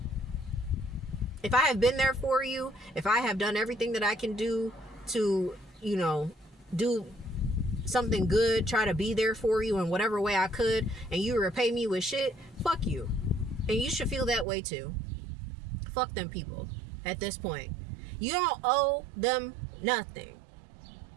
If I have been there for you, if I have done everything that I can do to, you know, do something good, try to be there for you in whatever way I could, and you repay me with shit, fuck you. And you should feel that way too. Fuck them people. At this point, you don't owe them nothing.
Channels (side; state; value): left; drops out; at 14.5 s